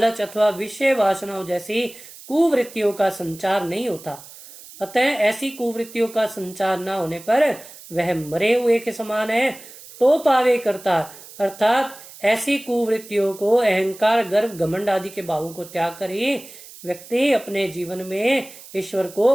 अथवा विषय वासनाओं जैसी कुवृत्तियों का संचार नहीं होता। अतः ऐसी कुवृत्तियों का संचार न होने पर वह मरे हुए के समान है। तो पावे करता अर्थात ऐसी कुवृत्तियों को, अहंकार, गर्व, घमंड आदि के भावों को त्याग कर ही व्यक्ति अपने जीवन में ईश्वर को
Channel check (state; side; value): noise; right; hiss, 18 dB below the sound